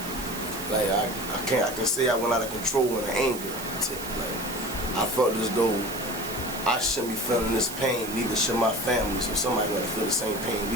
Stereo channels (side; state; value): right; noise; hiss, 10 dB below the sound